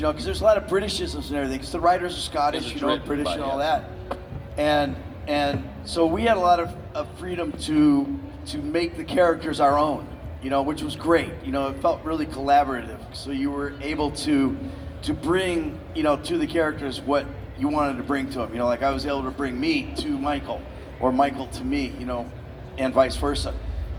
there's a lot of Britishisms and everything. Because the writers are Scottish, British and all that, and so we had a lot of freedom to make the characters our own, which was great. It felt really collaborative. So you were able to bring, to the characters what you wanted to bring to them. Like I was able to bring me to Michael, or Michael to me, and vice versa.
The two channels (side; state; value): both; identical; correlation 1.00